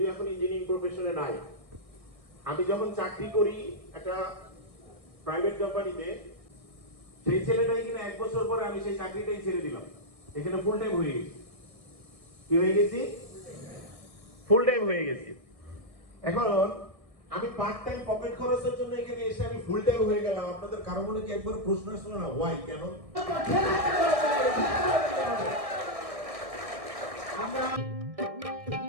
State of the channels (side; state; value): left; late; 1.6 ms